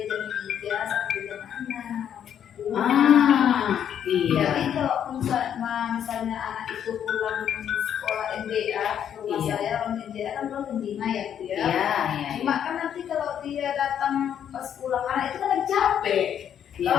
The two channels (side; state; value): right; quieter; 9.2 dB